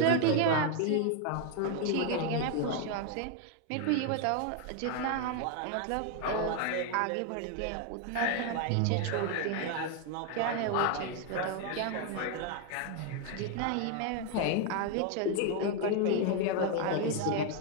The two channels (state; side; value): different; both; correlation 0.00